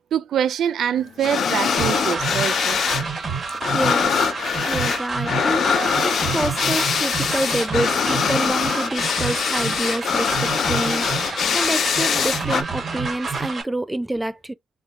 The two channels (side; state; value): both; normal; correlation 0.75